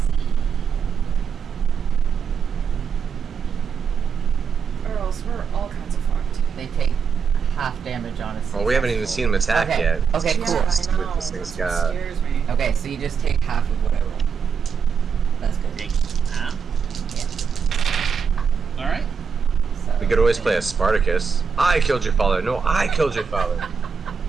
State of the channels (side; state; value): left; quieter; 6.3 dB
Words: see. Or else we're all kinds of fucked. They take half damage on a Well, we haven't even seen him attack Okay. yet. Okay, Yeah, cool. I know. This thing's That's what got- scares me. Okay, so you just take half of what I roll. That's good. Take half. Yeah. All right. So, We could always play a Spartacus. I killed your father. No, I killed your father.